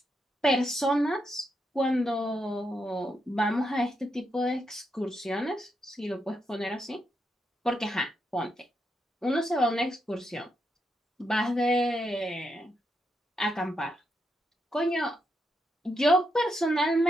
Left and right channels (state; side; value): normal; both; correlation 0.82